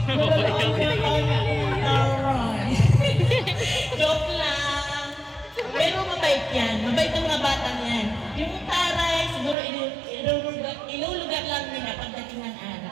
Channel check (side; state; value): left; drops out; at 9.6 s